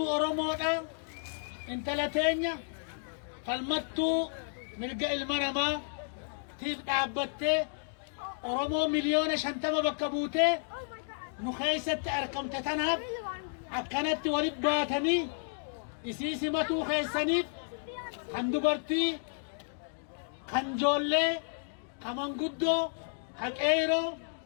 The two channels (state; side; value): silent; right; digital silence